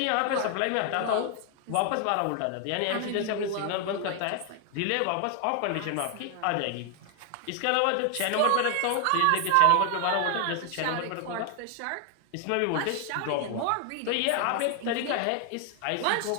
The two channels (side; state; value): both; different; correlation 0.00